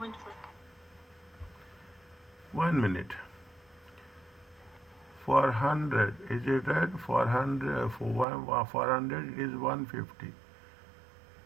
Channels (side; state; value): left; drops out; at 8.2 s